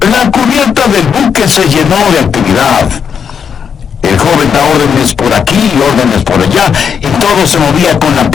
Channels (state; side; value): quieter; right; 7.1 dB